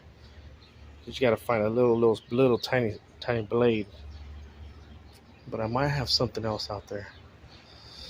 you just gotta find a little tiny blade. But I might have something else out there.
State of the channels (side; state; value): both; identical; correlation 1.00